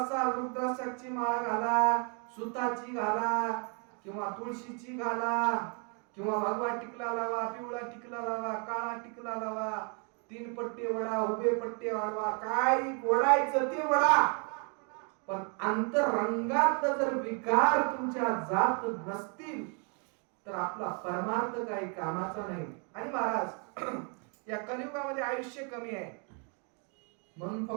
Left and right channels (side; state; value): left; quieter; 37.8 dB